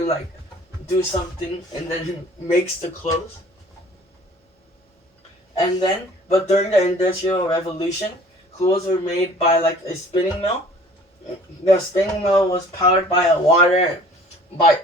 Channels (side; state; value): both; normal; correlation 0.50